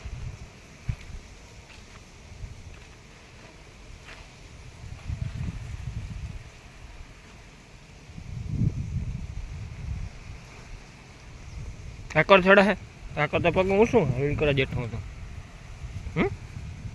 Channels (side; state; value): both; identical; correlation 1.00